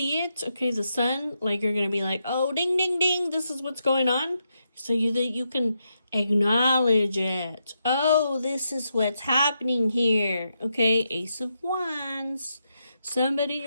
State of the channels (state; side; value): inverted; both; correlation -0.83